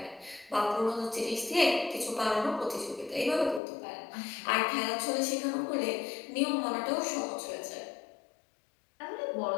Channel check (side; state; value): right; drops out; at 3.6 s